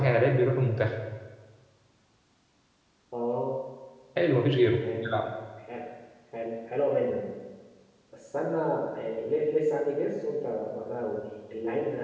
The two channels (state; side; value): identical; both; correlation 1.00